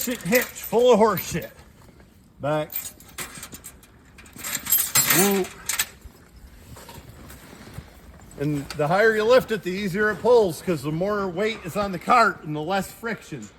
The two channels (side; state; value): both; identical; correlation 1.00